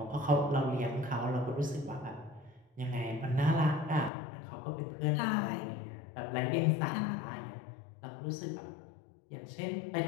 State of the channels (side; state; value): right; drops out; at 4.1 s